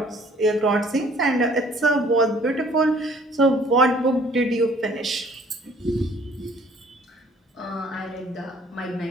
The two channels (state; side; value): normal; both; correlation 0.56